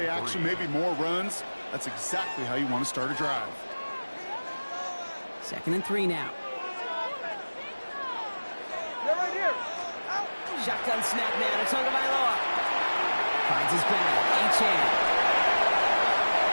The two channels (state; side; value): inverted; both; correlation -1.00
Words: action, maybe more runs. That's exactly how you want to start a drive. 2nd and 3 now. Shotgun snap now to Tagovailoa. Finds his back. Achane.